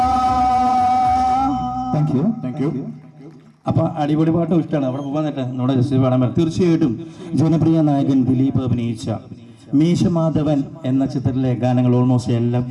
Thank you. അപ്പൊ അടിപൊളി പാട്ടും ഇഷ്ടമാണ്. അവിടെ പോകാൻ നേരത്തെ നമ്മുടെ ജസ്റ്റ് പാടാൻ പറ്റും. തീർച്ചയായിട്ടും ജനപ്രിയ നായകൻ ദിലീപ് അഭിനയിച്ച മീശമാധവൻ എന്ന ചിത്രത്തിലെ ഗാനങ്ങൾ ഓൾമോസ്റ്റ് എല്ലാം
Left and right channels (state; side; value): identical; both; correlation 1.00